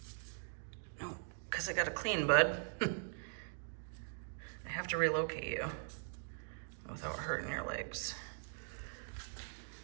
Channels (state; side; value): silent; left; digital silence